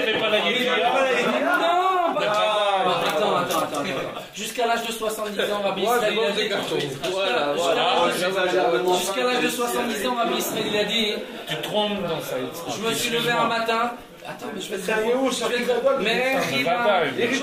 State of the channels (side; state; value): both; identical; correlation 1.00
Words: pas la Yediya. Non! Attends. Jusqu'à l'âge de 70 ans, Rabbi Israël a dit. Jusqu'à l'âge de 70 ans, Rabbi Israël il a dit. Tu te trompes dans ça. Je me suis levé un matin. Attends, mais je vais te répondre. Mais